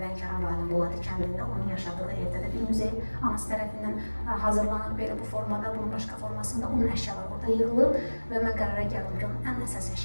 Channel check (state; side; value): inverted; both; correlation -1.00